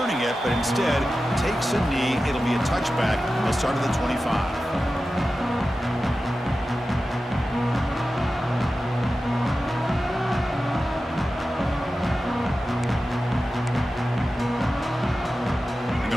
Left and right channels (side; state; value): both; normal; correlation 0.93